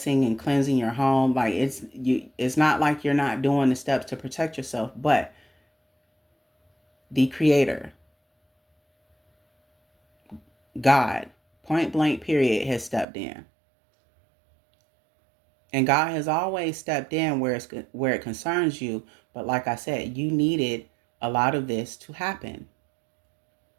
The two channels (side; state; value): left; drops out; at 13.1 s